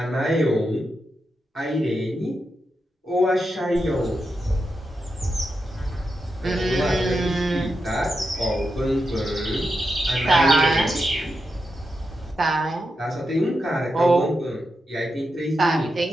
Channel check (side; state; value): both; normal; correlation 0.87